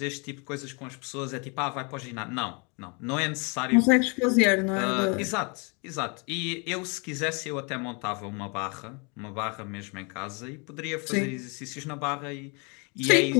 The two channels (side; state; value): right; quieter; 32.9 dB